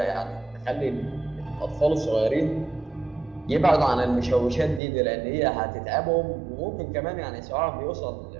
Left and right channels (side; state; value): left; drops out; at 4.8 s